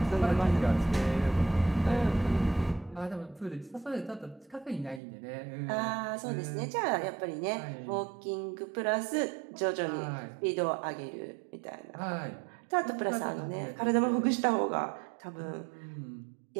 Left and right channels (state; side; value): drops out; left; at 5.0 s